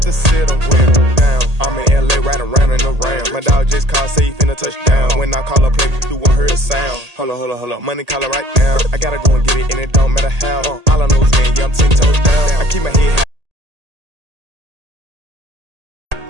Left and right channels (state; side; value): late; left; 1.8 ms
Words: to sit them down. I'm in LA, right around in the round. My dog just called, say he finna touchdown. When I call a play, you won't hear a sound. Hold up, money call it right now. I gotta go and get it, and it don't matter how. All I know is when, yeah, I'm 10 toes down. I keep my head high.